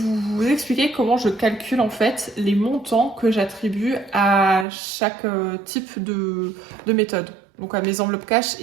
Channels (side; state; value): left; drops out; at 4.7 s